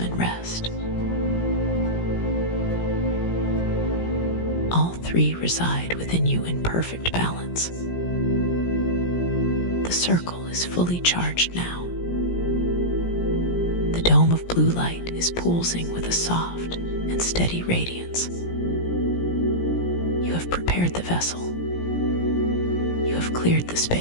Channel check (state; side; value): late; right; 17 ms